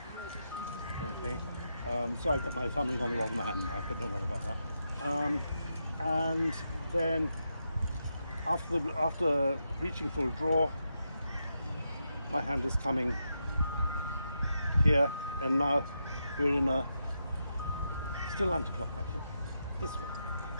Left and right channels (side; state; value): both; inverted; correlation -0.85